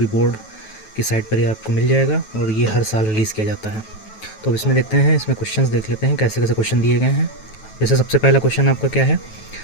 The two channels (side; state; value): right; late; 9.2 ms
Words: बोर्ड की साइट पर ये आपको मिल जाएगा और ये हर साल रिलीज़ किया जाता है। तो अब इसमें देखते हैं, इसमें क्वेश्चंस देख लेते हैं कैसे कैसे क्वेश्चन दिए गए हैं। जैसे सबसे पहला क्वेश्चन आपका क्या है,